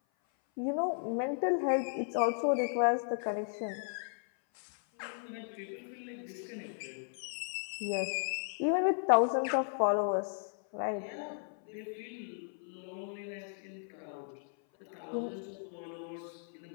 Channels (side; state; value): right; silent; 54 dB below the other